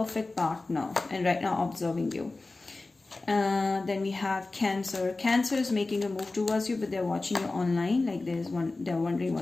partner and right now observing you. Then we have Cancer. Cancer is making a move towards you, but they're watching you online. Like they're wondering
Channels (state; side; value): quieter; right; 3.3 dB